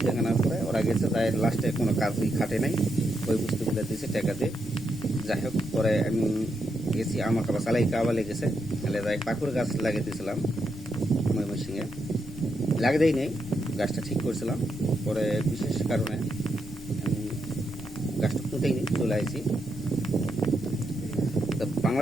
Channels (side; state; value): left; noise; rumble, 16 dB below the sound